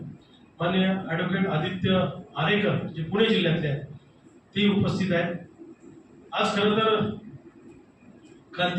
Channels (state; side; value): identical; both; correlation 1.00